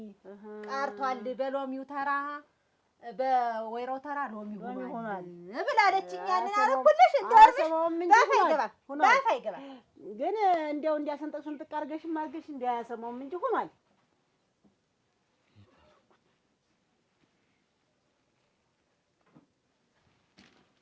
ቀርቷል። በሎሚው ተራ በወይራው ተራ ሎሚ ሆኗል ብላለችኝ። ያንን አረኩልሽ ባፍ አይገባም ግን እንዲያው እንዲያሰንጠቅ ስንጥቅ አድርገሽም አድርገሽ እንዲያሰማውም እንጂ ሆኗል።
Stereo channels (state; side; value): identical; both; correlation 1.00